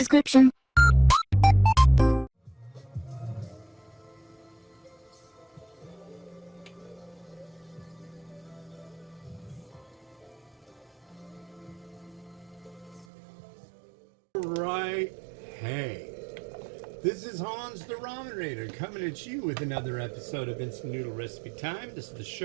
description. Right, hey, this is Hans the Ramen Raider coming at you with another episode of Instant Noodle Recipe Time. This is the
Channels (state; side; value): drops out; left; at 13.1 s